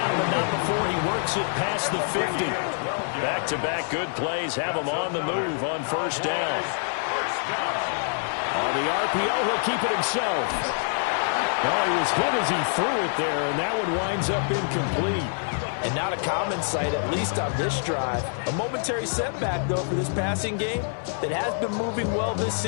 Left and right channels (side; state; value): right; silent; 61 dB below the other